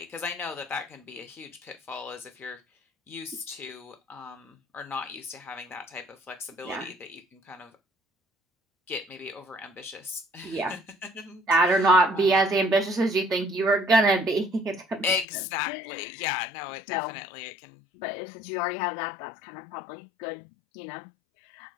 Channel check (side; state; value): right; drops out; at 15.2 s